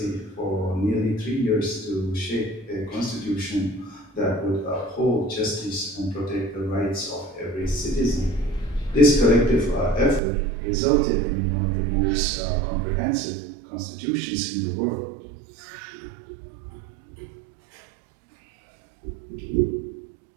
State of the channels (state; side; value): drops out; left; at 10.2 s